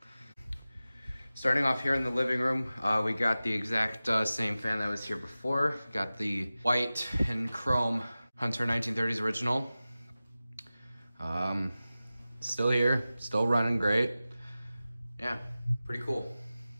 Starting off here in the living room, we got the exact same fan that was here before. Got the white and chrome Hunter 1930s original. Still here, still running great. Yeah, pretty cool.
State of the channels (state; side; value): inverted; both; correlation -0.96